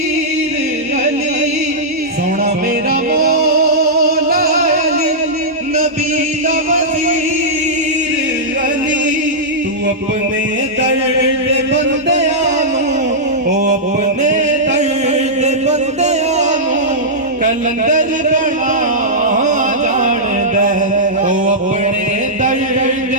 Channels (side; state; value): both; normal; correlation -0.12